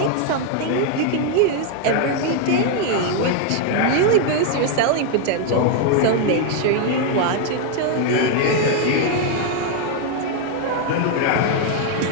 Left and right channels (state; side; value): different; both; correlation 0.00